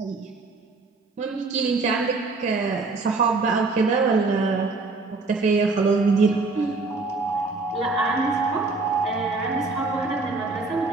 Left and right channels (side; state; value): left; quieter; 3.8 dB